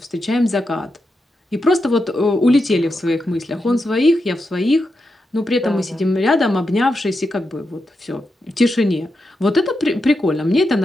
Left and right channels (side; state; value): both; normal; correlation 0.87